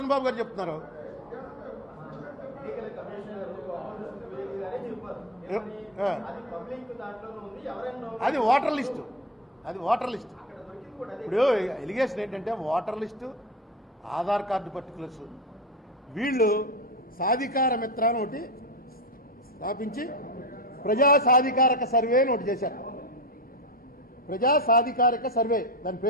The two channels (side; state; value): both; normal; correlation 0.21